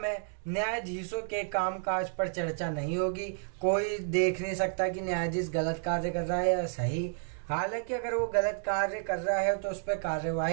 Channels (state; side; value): silent; left; 57 dB below the other